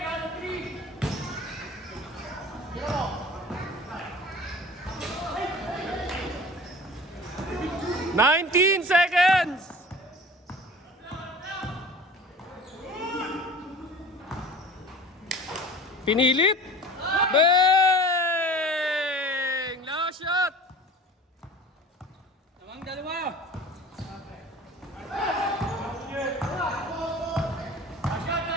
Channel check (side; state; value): both; normal; correlation 0.41